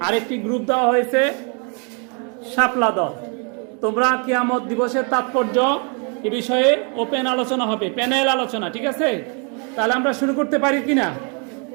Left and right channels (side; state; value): left; quieter; 36.8 dB